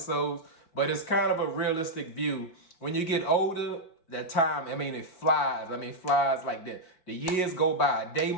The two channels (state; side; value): late; right; 4.8 ms